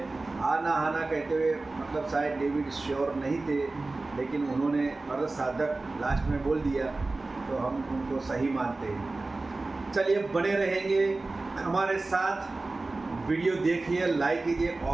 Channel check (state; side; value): quieter; left; 3.3 dB